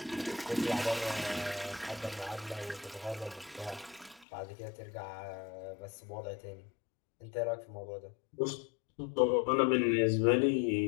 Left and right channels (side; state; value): right; drops out; at 4.2 s